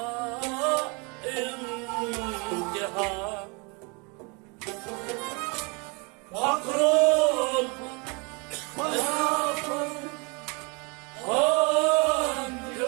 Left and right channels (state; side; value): quieter; left; 31.2 dB